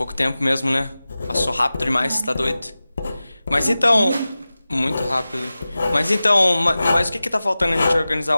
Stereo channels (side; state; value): both; inverted; correlation -0.96